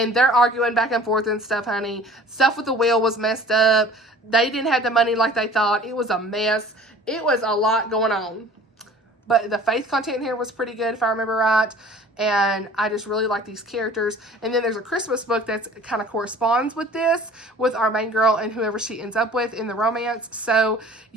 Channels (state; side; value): normal; both; correlation 0.47